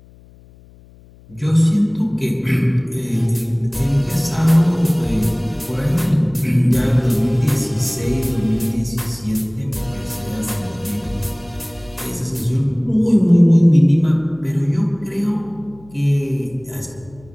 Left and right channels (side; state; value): left; noise; hum, 25 dB below the sound